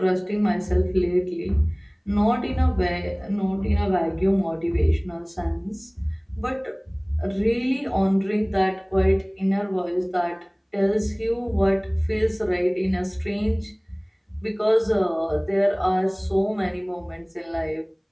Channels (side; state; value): both; identical; correlation 1.00